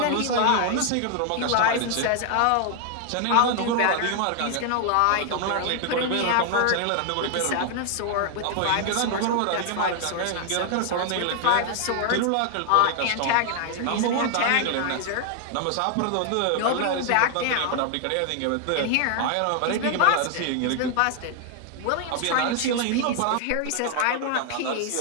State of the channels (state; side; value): different; both; correlation 0.00